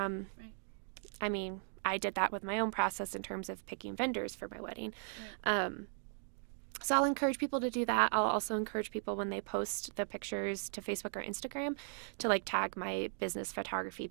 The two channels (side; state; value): left; silent; 53 dB below the other